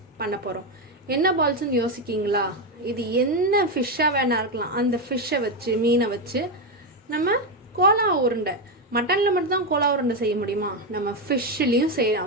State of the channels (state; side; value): normal; both; correlation 0.08